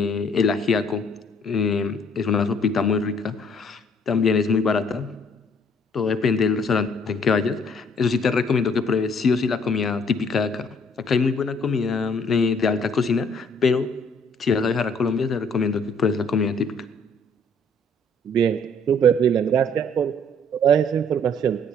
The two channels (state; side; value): normal; both; correlation 0.61